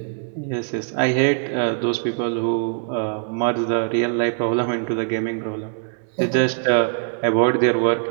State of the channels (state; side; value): silent; left; 61 dB below the other